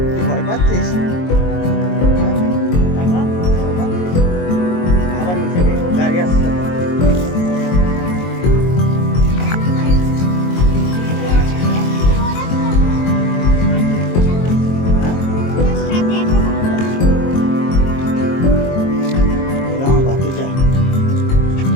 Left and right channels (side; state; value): right; late; 22 ms